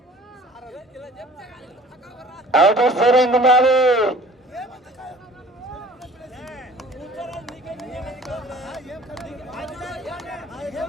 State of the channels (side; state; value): both; normal; correlation 0.49